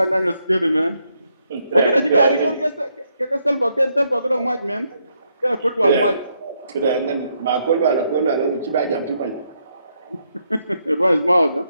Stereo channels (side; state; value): both; inverted; correlation -0.77